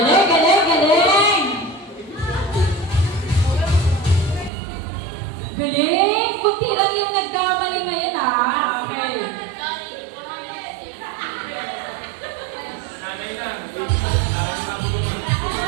Galing! Kunti lang yung nagkamali ngayon ha. Okay.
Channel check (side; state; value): left; drops out; at 4.5 s